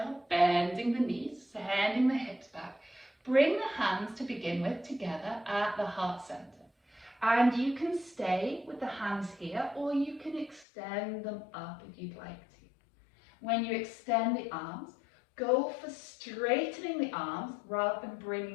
bending the knees, sending the hips back, bring the hands to begin with together at the heart center. And you can stay with the hands here, or you can extend them up if you'd like to. When you extend the arms, go for straightening the arms rather than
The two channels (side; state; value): right; drops out; at 10.7 s